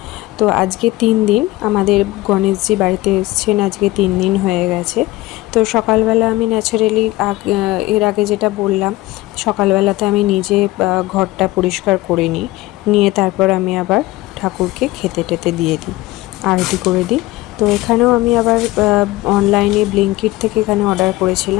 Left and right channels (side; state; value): right; quieter; 18.5 dB